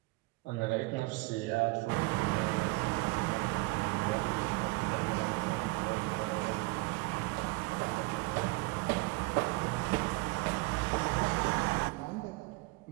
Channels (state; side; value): quieter; left; 24.5 dB